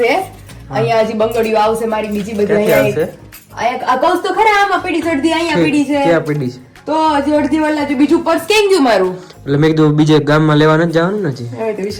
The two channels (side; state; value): both; identical; correlation 1.00